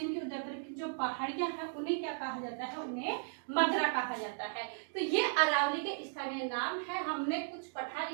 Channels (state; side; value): silent; left; digital silence